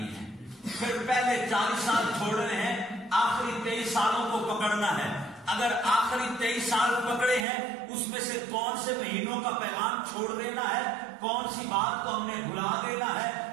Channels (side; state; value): left; drops out; at 7.5 s